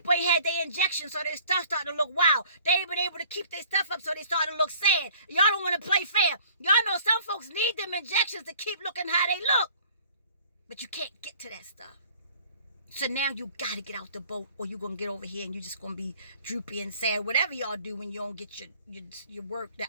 ain't had their injections, so their stuff starting to look wild. They ain't been able to keep their stuff up, so they starting to look sad. Y'all don't want to play fair. Y'all know some folks need them injections to keep looking how they look, but you can't get to that stuff. So now you got to get out the boat, or you're gonna get over here and you're just gonna be droopy and sad, whatever y'all do when you don't get your work.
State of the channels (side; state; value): both; inverted; correlation -0.53